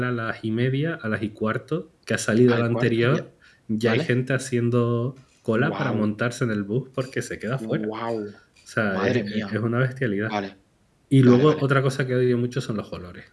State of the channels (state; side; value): identical; both; correlation 1.00